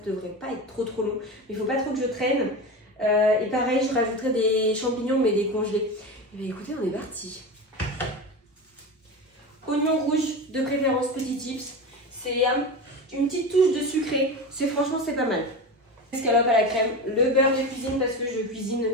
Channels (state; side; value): normal; both; correlation 0.25